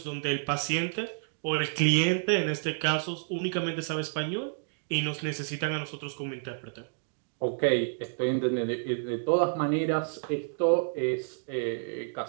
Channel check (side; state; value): left; silent; digital silence